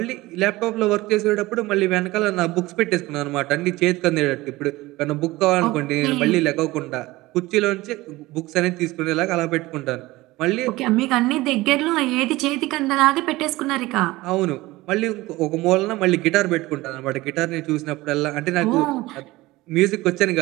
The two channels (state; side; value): quieter; left; 19.4 dB